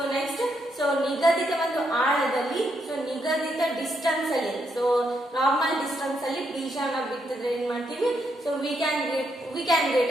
ನೆಕ್ಸ್ಟ್ ಸೊ ನಿಗದಿತ ಒಂದು ಆಳದಲ್ಲಿ ಸೊ ನಿಗದಿತ ಡಿಸ್ಟೆನ್ಸ್ ಅಲ್ಲಿ ಸೊ ನಾರ್ಮಲ್ ಡಿಸ್ಟೆನ್ಸ್ ಅಲ್ಲಿ ಬೀಜವನ್ನ ಬಿತ್ತಿದ್ರೆ ಏನ್ ಮಾಡ್ತೀವಿ so we can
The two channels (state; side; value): normal; both; correlation 0.78